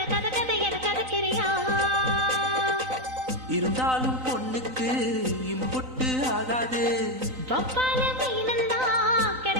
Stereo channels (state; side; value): late; left; 3.9 ms